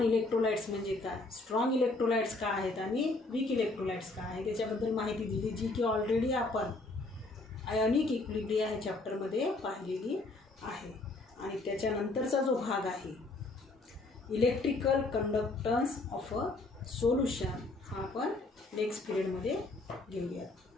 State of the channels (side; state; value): right; quieter; 3.1 dB